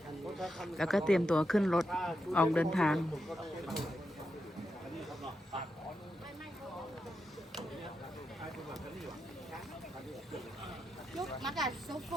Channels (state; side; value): normal; both; correlation 0.86